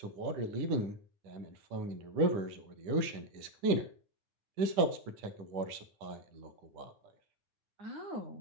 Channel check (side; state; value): left; late; 10 ms